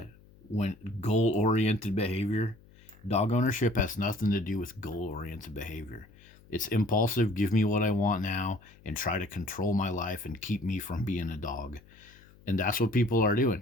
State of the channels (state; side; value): noise; left; hum, 25 dB below the sound